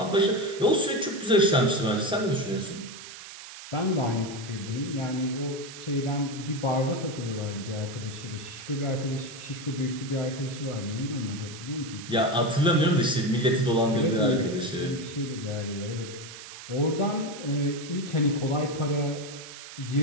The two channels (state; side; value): noise; right; hiss, 13 dB below the sound